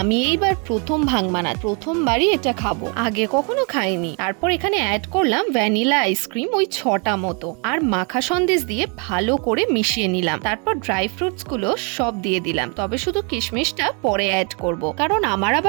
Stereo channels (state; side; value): quieter; left; 35.3 dB